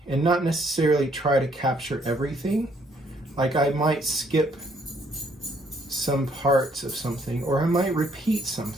and not necessarily try to capture everything. Like I might skip some parts of something, or I might repeat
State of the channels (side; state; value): both; normal; correlation 0.67